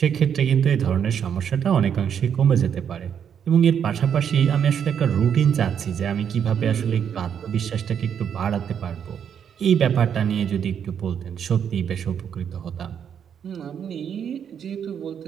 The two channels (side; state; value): left; quieter; 8.2 dB